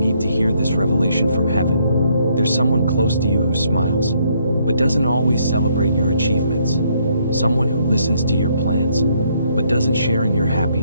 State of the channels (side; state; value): both; inverted; correlation -0.70